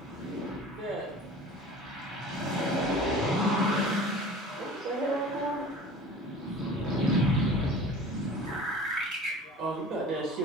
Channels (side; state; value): both; normal; correlation 0.41